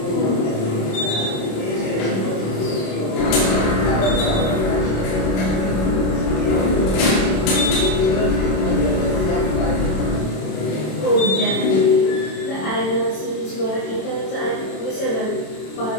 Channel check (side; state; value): right; late; 27 ms